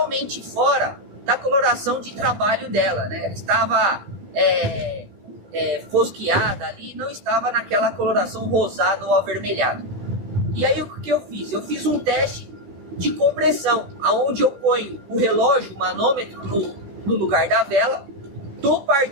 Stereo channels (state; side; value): late; left; 15 ms